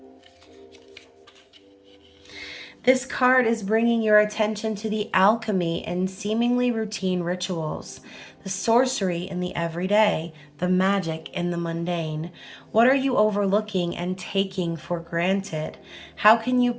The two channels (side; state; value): both; identical; correlation 1.00